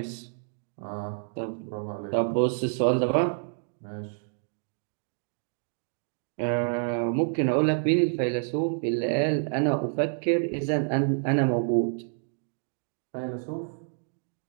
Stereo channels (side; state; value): left; silent; digital silence